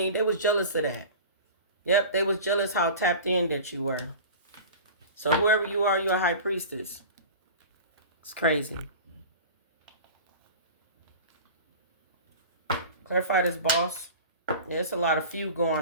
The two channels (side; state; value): both; inverted; correlation -0.36